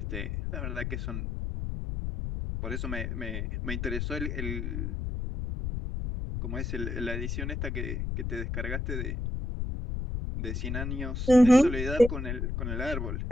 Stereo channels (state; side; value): noise; left; rumble, 3 dB below the sound